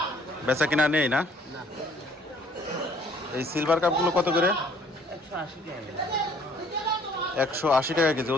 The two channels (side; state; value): both; normal; correlation 0.59